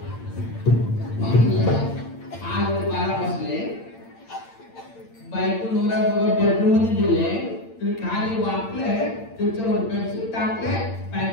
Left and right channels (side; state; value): right; late; 8.8 ms